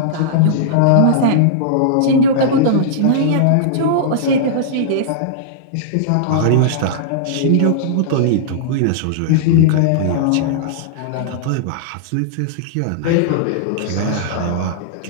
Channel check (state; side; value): different; both; correlation -0.02